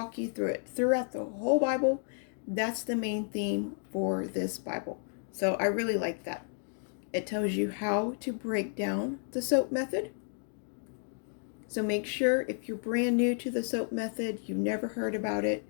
you through it throughout the whole Bible. That's the main theme for this Bible. So I really like that. It tells you how to break down the soap method. So make sure if you're brand new to the soap method, you've never heard about it,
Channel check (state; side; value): silent; right; 56 dB below the other